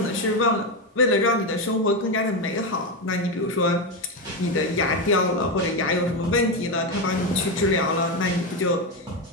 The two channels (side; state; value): both; normal; correlation 0.11